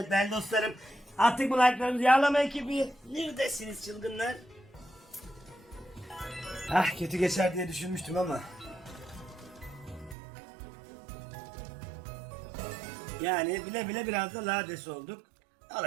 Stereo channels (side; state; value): left; drops out; at 10.2 s